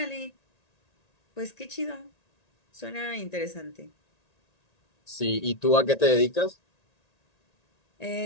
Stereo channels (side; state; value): right; late; 1.9 ms